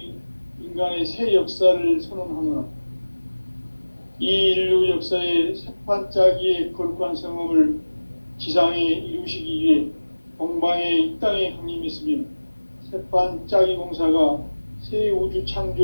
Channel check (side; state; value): both; inverted; correlation -1.00